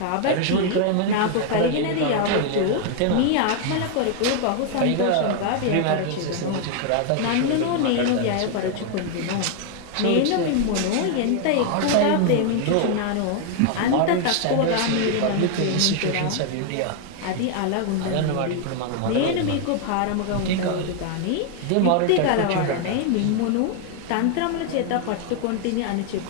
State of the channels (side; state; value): both; different; correlation 0.00